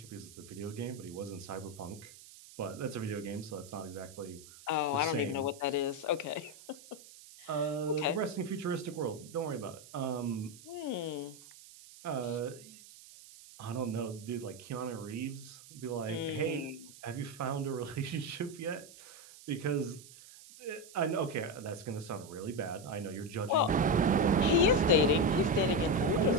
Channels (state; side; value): noise; right; hiss, 19 dB below the sound